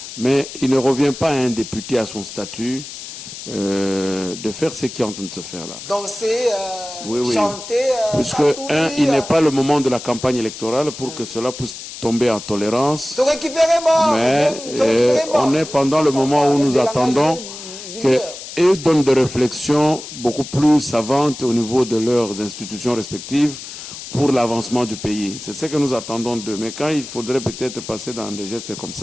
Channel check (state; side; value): noise; left; hiss, 12 dB below the sound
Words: mais il ne revient pas à un député à son statut de faire ce qui est en train de se faire là. Danser, chanter, puisque, il n'est pas le moment de la campagne électorale pour que cela puisse tomber en tolérance. Mais on est pendant le moment où nous attendons qu'ils donnent des réflexions beaucoup plus savantes au niveau de leurs institutions respectives pour l'avancement du pays. C'est ce que nous attendons d'eux. Mais quand il faudrait peut-être passer dans des gestes comme